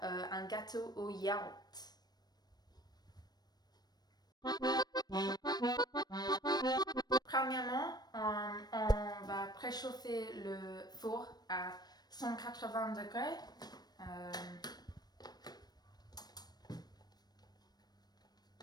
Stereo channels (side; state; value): right; late; 0.19 ms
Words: un gâteau au yaourt. Premièrement, on va préchauffer le four à 180 degrés.